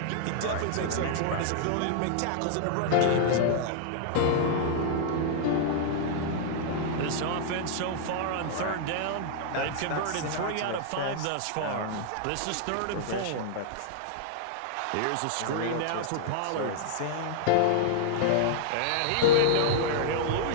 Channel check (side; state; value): both; different; correlation -0.01